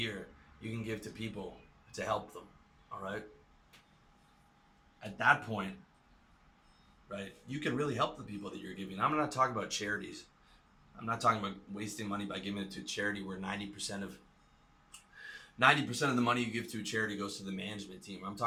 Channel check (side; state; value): both; identical; correlation 1.00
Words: you can give to people to help them, all right? At that point, right, you can really help the people that you're giving. I'm not talking about charities. I'm not talking about wasting money by giving it to a charity where 90% of the money you give to a charity goes to the management team. I'm